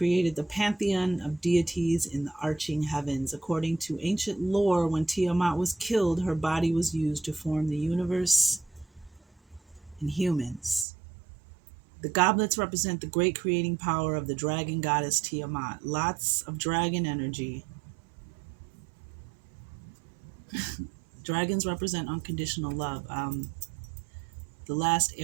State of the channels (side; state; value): left; drops out; at 10.9 s